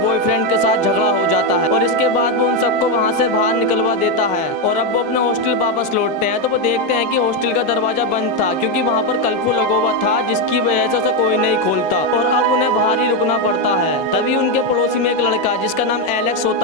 के साथ झगड़ा हो जाता है और इसके बाद वो उन सबको वहाँ से बाहर निकलवा देता है और अब वो अपने हॉस्टल वापस लौटते हैं तो वो देखते हैं कि हॉस्टल का दरवाजा बंद था क्योंकि वहाँ पर कर्फ्यू लगा हुआ था, जिसकी वजह से उसे कोई नहीं खोलता और अब उन्हें बाहर ही रुकना पड़ता है। तभी उनके पड़ोसी में एक लड़का जिसका नाम एलेक्स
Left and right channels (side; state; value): both; normal; correlation 0.06